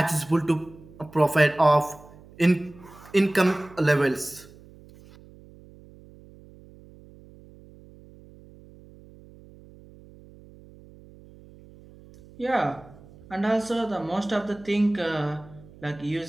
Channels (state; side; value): noise; right; hum, 22 dB below the sound